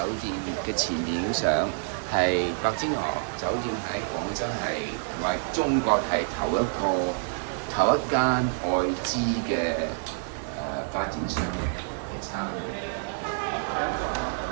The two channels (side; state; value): left; silent; digital silence